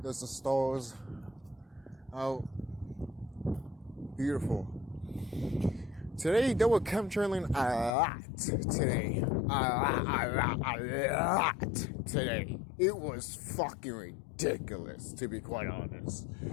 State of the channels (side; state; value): right; drops out; at 7.9 s